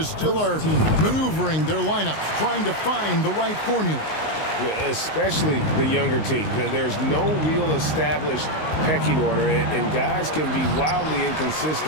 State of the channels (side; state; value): right; late; 19 ms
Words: still are maneuvering their lineups, trying to find the right formula. Especially the younger teams. There's no real established pecking order, and guys can be wildly